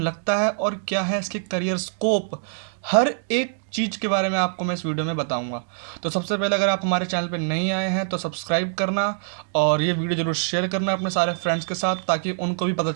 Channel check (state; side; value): silent; left; digital silence